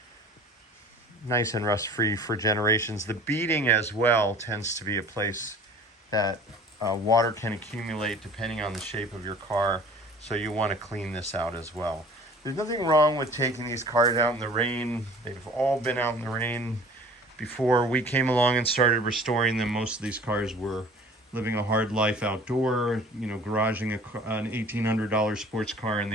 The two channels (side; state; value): both; normal; correlation 0.46